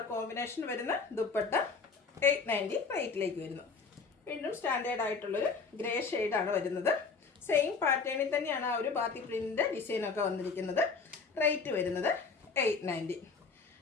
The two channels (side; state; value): right; quieter; 4.8 dB